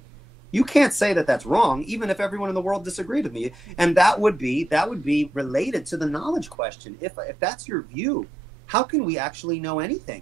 You can't say that that's wrong, even if everyone in the world disagreed with me. And that would be related to the knowledge question. If that's your view, how can we actually know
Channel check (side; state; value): left; drops out; at 6.6 s